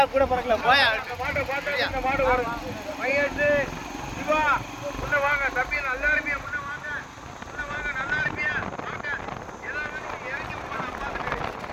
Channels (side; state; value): both; identical; correlation 1.00